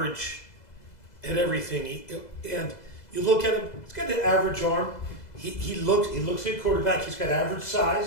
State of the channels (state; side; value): late; right; 2.0 ms